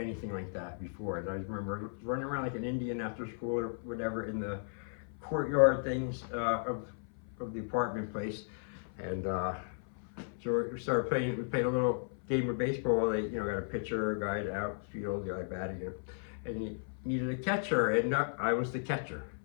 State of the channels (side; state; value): right; silent; 54 dB below the other